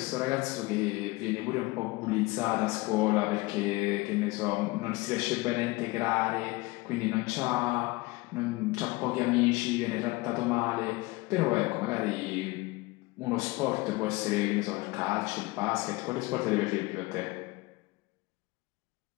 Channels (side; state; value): right; quieter; 22.5 dB